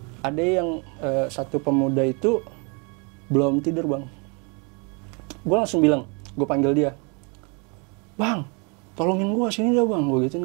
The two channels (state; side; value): quieter; left; 33.3 dB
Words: Ada yang satu pemuda itu belum tidur bang. Gue langsung bilang, gue panggil dia, bang, tolongin gue sini dah bang, gue gituin